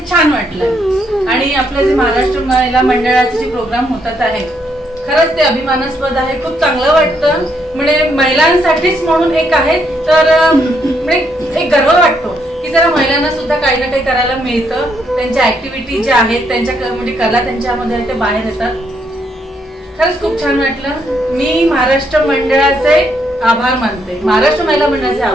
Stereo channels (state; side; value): normal; both; correlation 0.75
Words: छान वाटलं. आणि आपलं जे महाराष्ट्र महिला मंडळाचे जे प्रोग्राम होतात आहे खरंच ते अभिमानास्पद आहे. खूप चांगलं वाटतं, म्हणजे महिलांसाठीच म्हणून एक आहे तर म्हणजे एक गर्व वाटतो की जरा महिलांना सुद्धा काही ना काही करायला मिळतं. त्यांच्या ऍक्टिव्हिटी ज्या आहेत त्यांच्या म्हणजे कला त्यांच्यामध्ये आहे ते बाहेर येतात. खरंच खूप छान वाटलं. मी महाराष्ट्र मंडळाचे आभार मानते, महाराष्ट्र महिला मंडळाचे